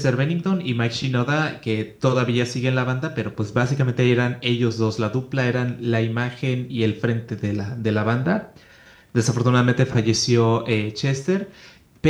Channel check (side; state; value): both; identical; correlation 1.00